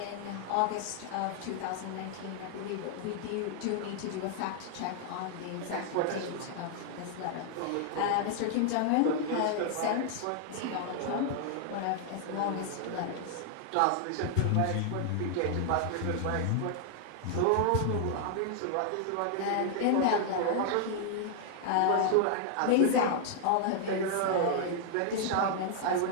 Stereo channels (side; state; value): both; different; correlation -0.01